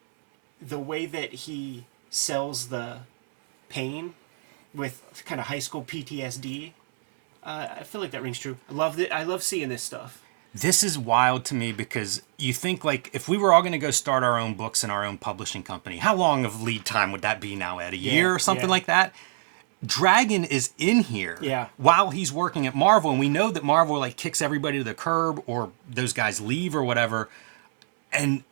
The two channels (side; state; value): left; silent; 61 dB below the other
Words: the way that he sells the pain with kind of high school PTSD, I feel like that rings true. I love seeing this stuff. This is wild to me because you think like if we were all going to go start our own books in our own publishing company, how long of lead time would that be now, Ed? A year or something like that? Dragon is in here while he's working at Marvel, and we know that Marvel like kicks everybody to the curb or those guys leave or whatever, and